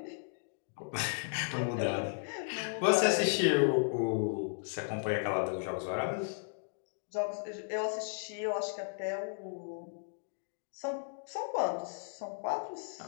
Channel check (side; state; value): right; silent; digital silence